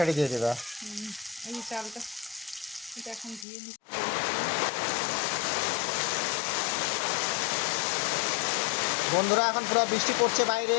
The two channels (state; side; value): drops out; right; at 3.5 s